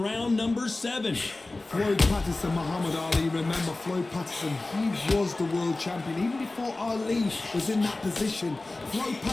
round number 7. Floyd Patterson, Muhammad Ali. Remember Floyd Patterson, he was the world champion even before Ali was in that position. Floyd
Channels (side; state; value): right; quieter; 3.1 dB